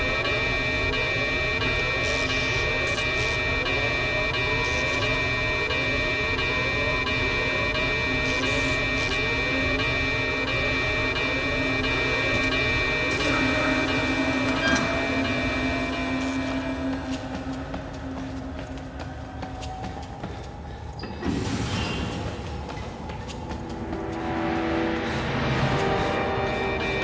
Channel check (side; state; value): both; identical; correlation 1.00